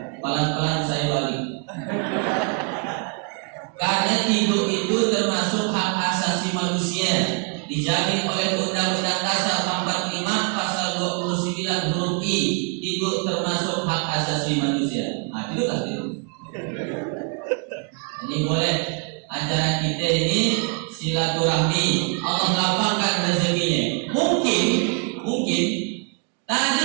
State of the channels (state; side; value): quieter; left; 39.4 dB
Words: Pelan-pelan saya balik. Karena tidur itu termasuk hak asasi manusia, dijamin oleh Undang-Undang Dasar 45 pasal 29 huruf I. Tidur termasuk hak asasi manusia. Nah, tidurlah tidur. Ini boleh acara kita ini silaturahmi, Allah lapangkan rezekinya. Mungkin